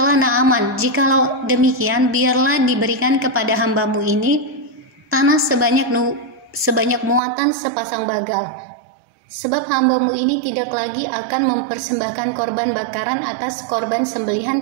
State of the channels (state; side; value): drops out; left; at 7.2 s